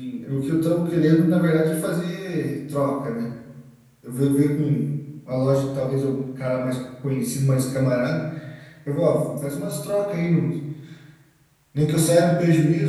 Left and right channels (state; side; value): identical; both; correlation 1.00